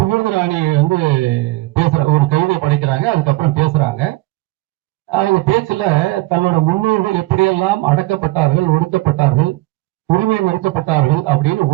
பேசுற ஒரு கவிதை படைக்கிறாங்க, அதுக்கப்புறம் பேசுறாங்க. அவங்க பேச்சுல தன்னோட முன்னோர்கள் எப்படியெல்லாம் அடக்கப்பட்டார்கள், ஒடுக்கப்பட்டார்கள், உரிமை மறுக்கப்பட்டார்கள் அப்படின்னு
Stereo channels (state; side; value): quieter; left; 19.5 dB